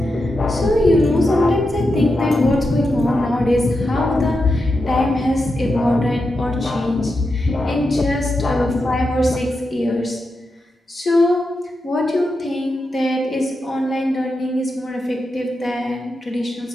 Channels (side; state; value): both; normal; correlation 0.87